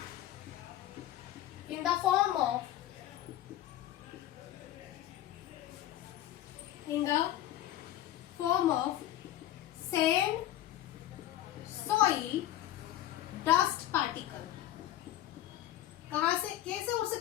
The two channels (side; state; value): right; quieter; 13.2 dB